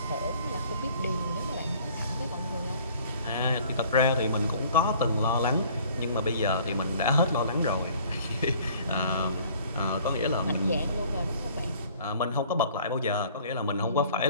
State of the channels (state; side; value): inverted; both; correlation -0.53